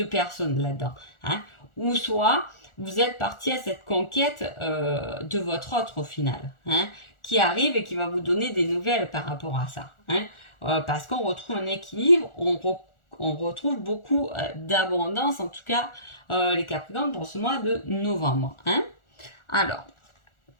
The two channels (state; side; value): late; right; 1.4 ms